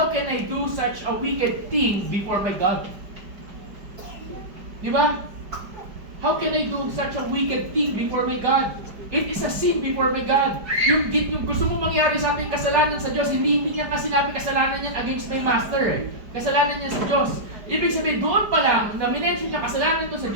I do such a wicked thing before my God? Di ba? How can I do such a wicked thing before my God? It is a sin before my God. Yung gusto mo mangyari sa ating kasalanan sa Diyos, hindi niya kasi sinabi kasalanan niya against my master. Kasalanan niya sa Diyos. Ibig sabihin, doon pa lang, na minention niya kasalanan to sa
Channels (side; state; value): left; late; 5.0 ms